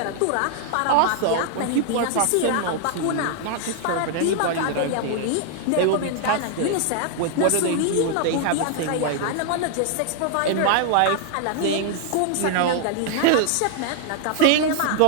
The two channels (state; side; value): different; both; correlation 0.00